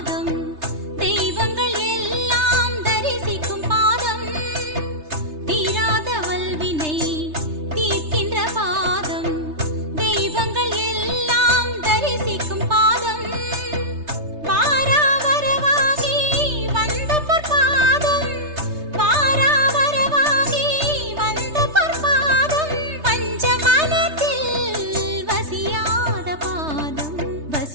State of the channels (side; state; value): left; late; 3.3 ms